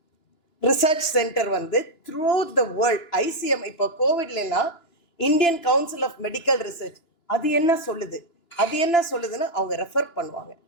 ரிசர்ச் சென்டர் வந்து த்ரூ த வேர்ல்ட் ICM இப்போ கோவிட்லாம் Indian council of medical research அது என்ன சொல்லுது, அது என்ன சொல்லுதுன்னு அவங்க ரெஃபர் பண்ணுவாங்க.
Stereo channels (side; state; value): right; late; 2.9 ms